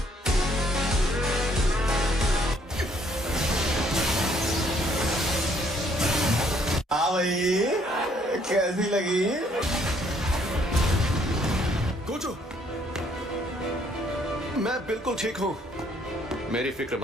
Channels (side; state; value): both; normal; correlation 0.65